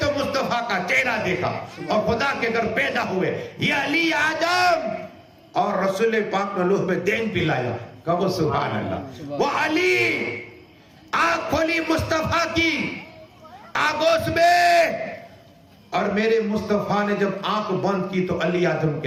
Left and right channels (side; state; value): both; identical; correlation 1.00